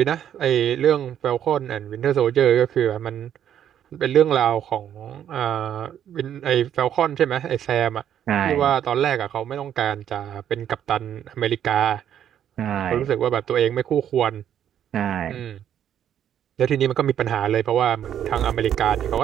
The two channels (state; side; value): quieter; left; 9.9 dB